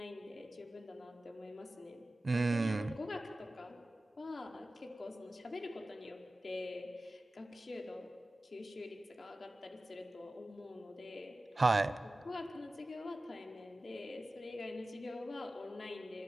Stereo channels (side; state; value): both; normal; correlation 0.96